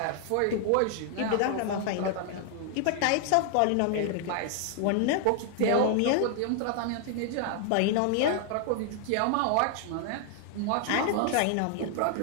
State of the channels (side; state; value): both; different; correlation 0.00